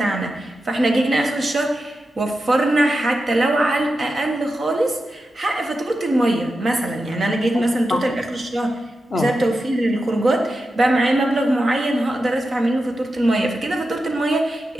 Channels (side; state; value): both; normal; correlation 0.90